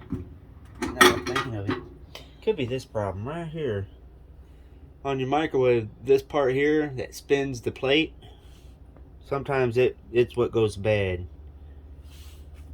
now I'm thinking of it, could be this problem right here. On your microwave, this part here that spins the plate, sometimes it's what goes bad.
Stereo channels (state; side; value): identical; both; correlation 1.00